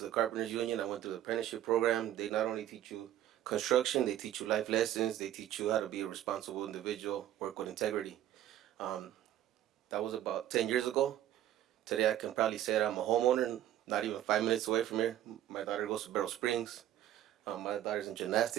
the Carpenters Union, I went through the apprenticeship program. They not only teach you construction, they teach you life lessons. They teach you how to be a responsible individual, work with integrity. That was about 10 years ago. Today I can probably say that I'm a homeowner, not even 5 minutes away from here. My daughter goes to Barrel Springs. My daughter's in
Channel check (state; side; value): quieter; left; 12.2 dB